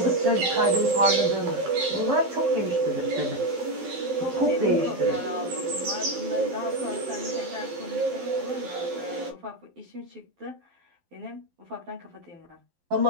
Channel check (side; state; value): left; late; 12 ms